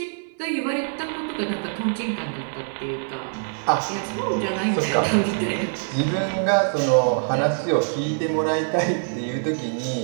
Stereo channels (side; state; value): left; silent; 63 dB below the other